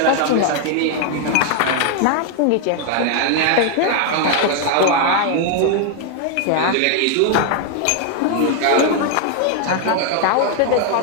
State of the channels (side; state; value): both; different; correlation 0.00